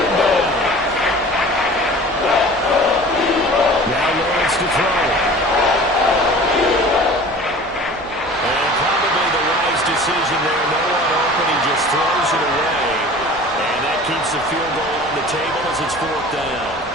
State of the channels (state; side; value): normal; both; correlation 0.42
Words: down. Now Lawrence to throw. And probably the wise decision there. No one open. He just throws it away. And that keeps the field goal on the table as it's 4th down.